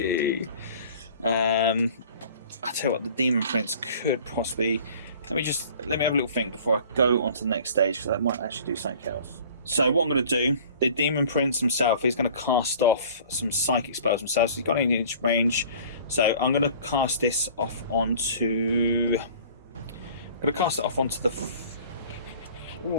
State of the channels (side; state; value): both; inverted; correlation -0.48